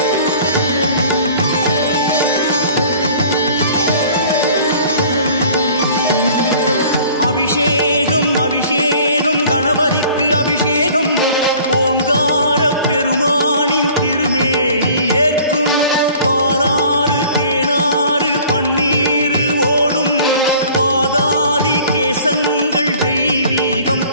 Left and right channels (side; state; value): both; inverted; correlation -0.50